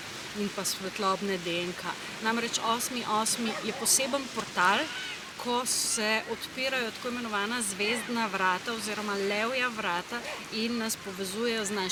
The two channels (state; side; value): identical; both; correlation 1.00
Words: in pa svetlobne DNK. Namreč 8.8. je poseben portal, ko se odpirajo tako imenovana zvezdna vrata oziroma levja vrata in nas povezujejo z